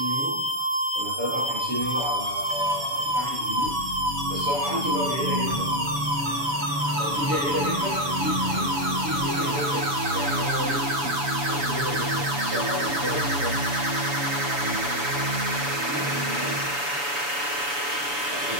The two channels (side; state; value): left; late; 7.0 ms